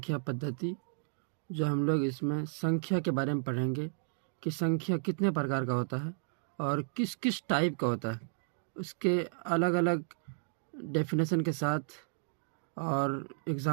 पद्धति। जो हम लोग इसमें संख्या के बारे में पढ़ेंगे कि संख्या कितने प्रकार का होता है और किस किस टाइप का होता है, उसके अलग अलग डेफिनेशन के साथ और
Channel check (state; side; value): silent; left; digital silence